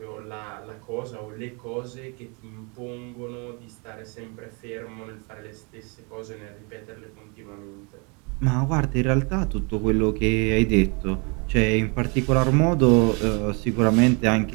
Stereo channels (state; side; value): quieter; left; 32.5 dB